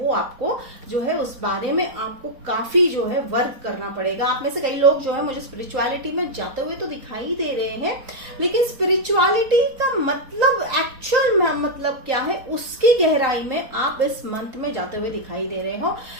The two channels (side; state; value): left; late; 4.2 ms